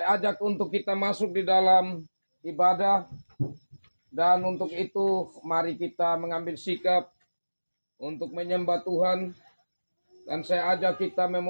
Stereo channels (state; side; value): inverted; both; correlation -1.00